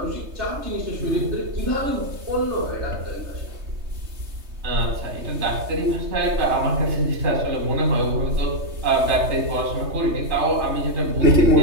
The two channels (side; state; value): left; late; 3.3 ms